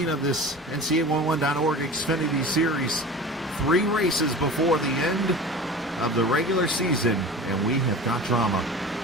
of this NC811.org Xfinity Series. 3 races before the end of the regular season, and we have got drama.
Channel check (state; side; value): normal; both; correlation 0.36